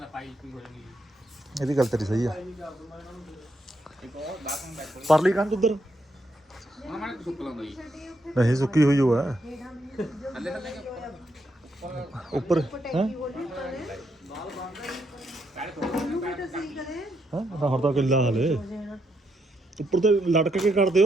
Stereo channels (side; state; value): both; normal; correlation 0.79